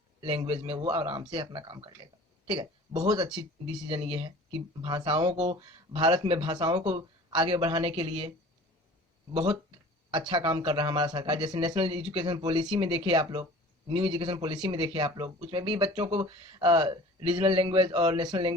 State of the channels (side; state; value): both; normal; correlation 0.44